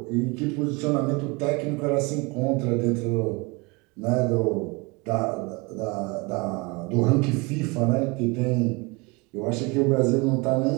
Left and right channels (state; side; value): quieter; left; 26.7 dB